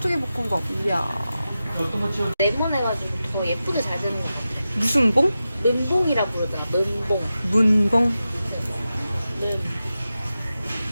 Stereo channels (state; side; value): inverted; both; correlation -0.92